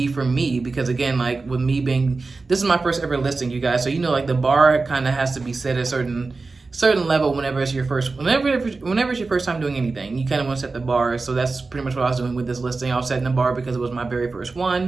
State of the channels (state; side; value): quieter; left; 3.9 dB